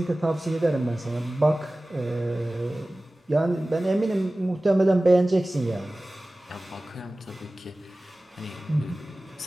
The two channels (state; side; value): normal; both; correlation 0.97